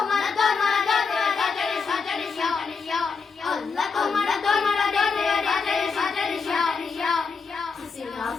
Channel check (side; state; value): right; quieter; 5.1 dB